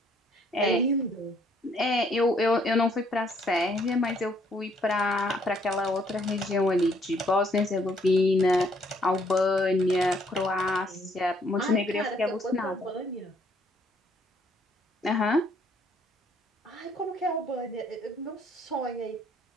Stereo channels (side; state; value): both; normal; correlation 0.66